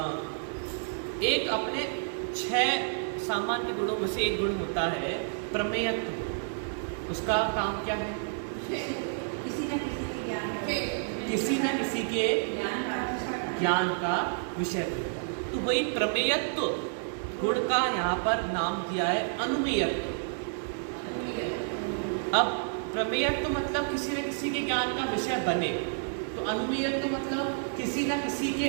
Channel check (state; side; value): silent; left; digital silence